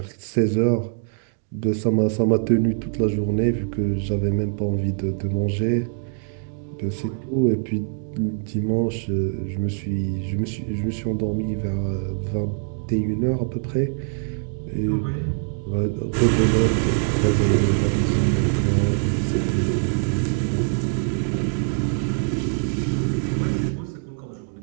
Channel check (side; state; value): left; silent; 63 dB below the other